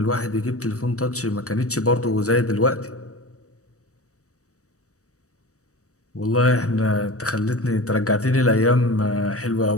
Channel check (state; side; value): late; right; 0.65 ms